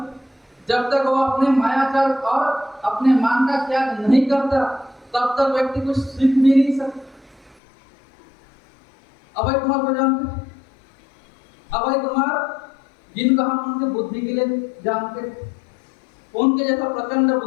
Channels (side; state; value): right; drops out; at 7.6 s